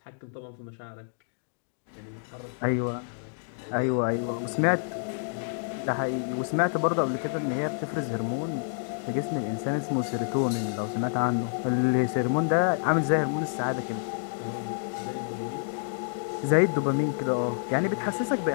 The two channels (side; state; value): right; silent; digital silence